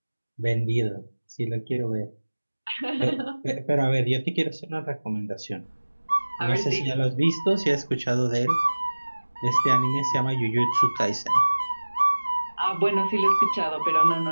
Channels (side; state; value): both; inverted; correlation -1.00